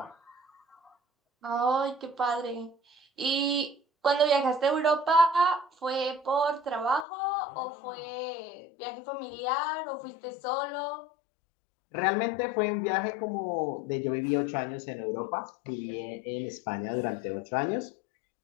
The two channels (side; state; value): right; drops out; at 7.1 s